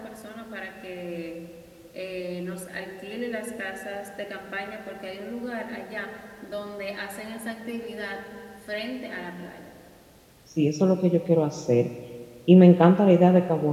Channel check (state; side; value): identical; both; correlation 1.00